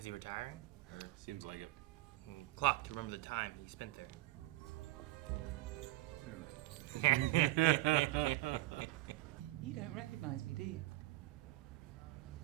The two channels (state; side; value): quieter; left; 17.5 dB